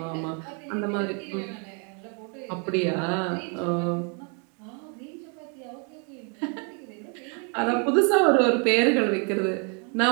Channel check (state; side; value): quieter; left; 37.7 dB